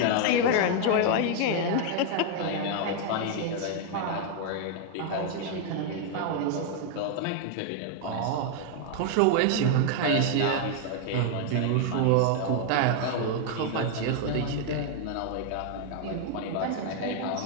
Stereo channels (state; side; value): different; both; correlation 0.00